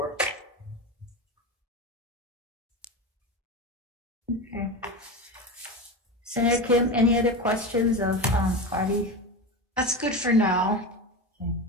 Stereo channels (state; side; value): normal; both; correlation 0.23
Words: Okay. Senator Kim, any other questions of Cardi? That's good for now.